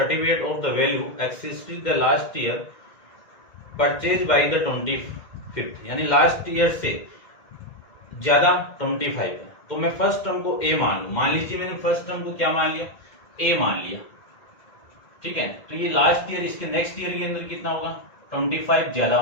of the value existed the last year purchase by the 25th, यानी लास्ट ईयर से ज्यादा 25 है। तो मैं फर्स्ट टर्म को ए मान लूं। मान लीजिए मैंने फर्स्ट टर्म को क्या मान लिया, ए मान लिया, ठीक है। तो ये लास्ट ईयर, इसके नेक्स्ट ईयर के अंदर कितना होगा, 25 ज्यादा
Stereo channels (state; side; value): late; right; 2.1 ms